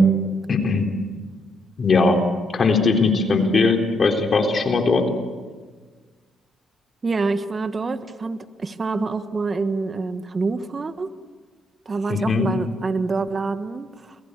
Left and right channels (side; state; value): both; normal; correlation 0.75